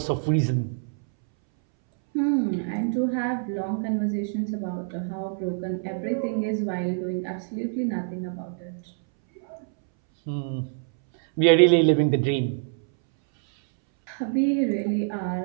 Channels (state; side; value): silent; left; 61 dB below the other